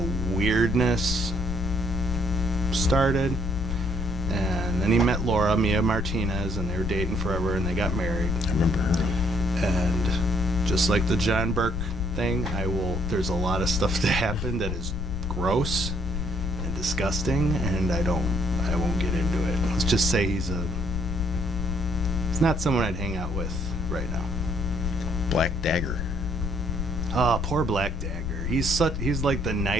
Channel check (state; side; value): noise; left; rumble, 3 dB below the sound